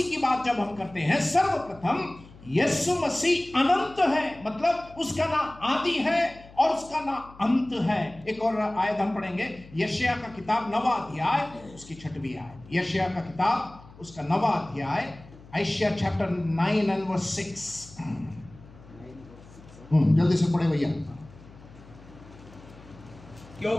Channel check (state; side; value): noise; left; hum, 21 dB below the sound